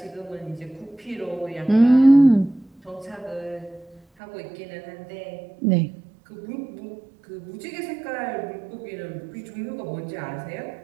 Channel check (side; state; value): left; drops out; at 4.0 s